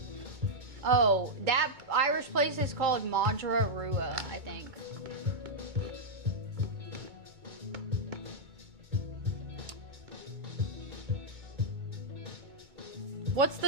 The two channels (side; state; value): left; late; 2.2 ms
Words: Oh, that Irish place is called Madra Rua, I think. What's